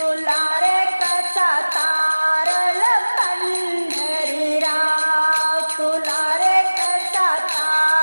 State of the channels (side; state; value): both; inverted; correlation -1.00